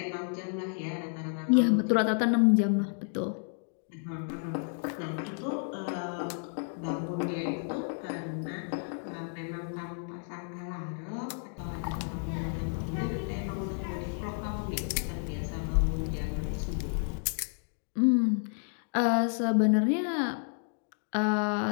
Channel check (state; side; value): silent; right; 57 dB below the other